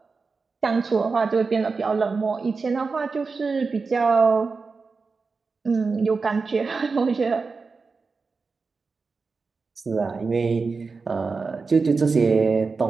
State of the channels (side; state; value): left; quieter; 4.5 dB